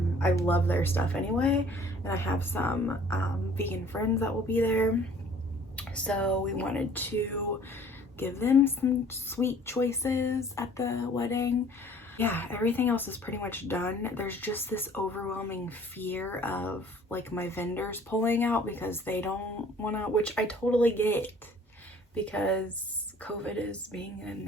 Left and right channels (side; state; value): both; normal; correlation 0.53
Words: I love their stuff anyway, and I have some vegan friends that will be there. So we wanted to give them some sweet choices at the wedding. Yeah, everything else is pretty much done. There's just this overwhelming fear of like my vendors pulling out because they don't want to, which I totally get because COVID is being a